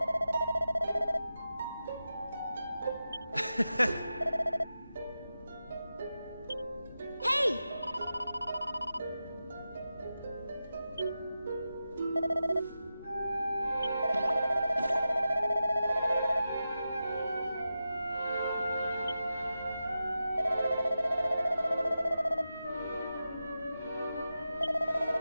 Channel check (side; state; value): both; inverted; correlation -0.91